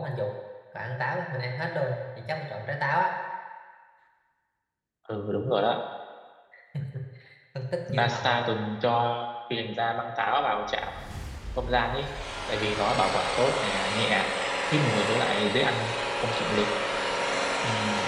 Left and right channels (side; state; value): both; identical; correlation 1.00